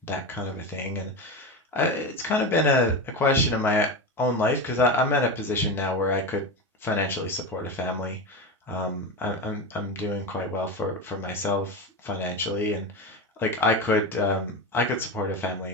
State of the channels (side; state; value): both; normal; correlation 0.20